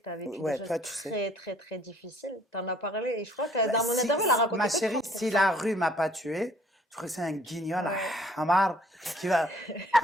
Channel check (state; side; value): normal; both; correlation 0.59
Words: tu as vécu des Ouais, choses toi, tu sais. très, très, très difficiles. Tu en as parlé et je crois que Bah, dans mon interview, elle a ma raconté que chérie, 30%. si la rue m'a pas tué, je crois que c'est un guignol, Ouais. Hamar, qui va,